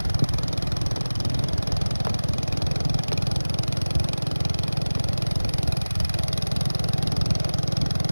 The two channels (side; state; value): both; inverted; correlation -1.00